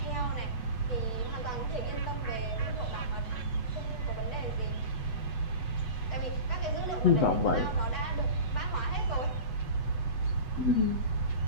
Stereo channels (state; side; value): late; right; 8.0 ms